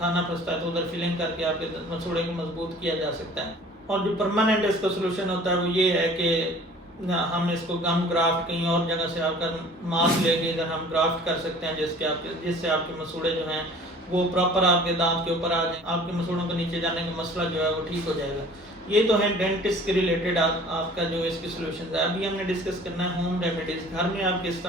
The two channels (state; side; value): normal; both; correlation 0.48